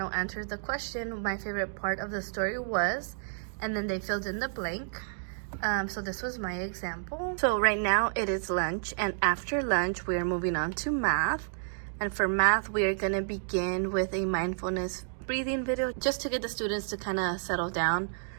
answered the question, my favorite part of the story was, and then they filled in the blank. So this was my example. So right now it is lunch, and after lunch we are moving on to math. And for math, we are gonna begin with a mindfulness breathing video just to get the students to kind of settle down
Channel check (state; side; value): silent; left; digital silence